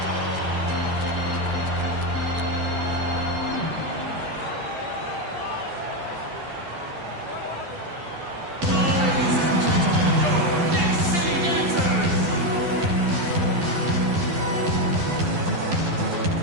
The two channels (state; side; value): late; left; 12 ms